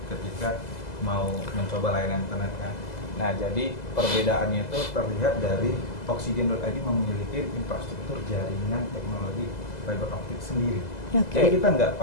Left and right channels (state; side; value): late; right; 2.0 ms